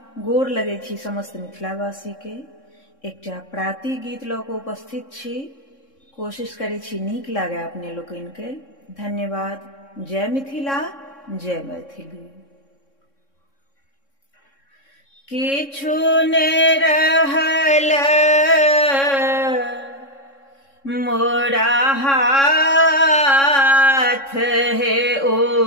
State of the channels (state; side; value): late; right; 3.6 ms